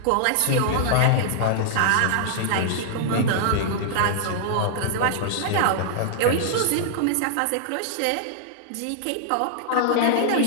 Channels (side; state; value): both; different; correlation -0.01